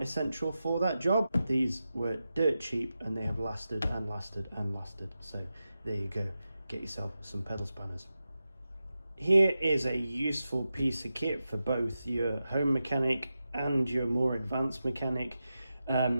for that job. These were dirt cheap and they have lasted and lasted and lasted. So there you go. Get yourself some pedal spanners. Here is a useful piece of kit for both your home mechanic and your more advanced mechanic.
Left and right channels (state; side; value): inverted; both; correlation -0.91